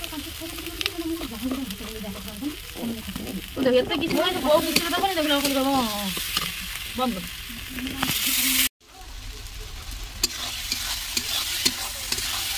एत किसी बहुत किसी दबनी देख बंद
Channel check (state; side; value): identical; both; correlation 1.00